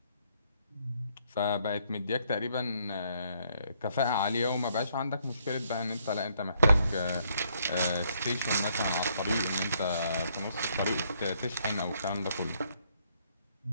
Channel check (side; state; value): both; inverted; correlation -0.70